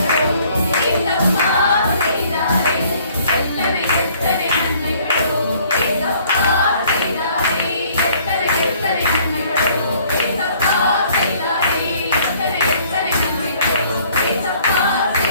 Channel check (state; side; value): inverted; both; correlation -0.59